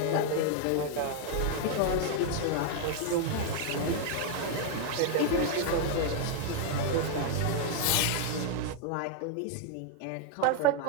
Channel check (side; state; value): both; different; correlation 0.00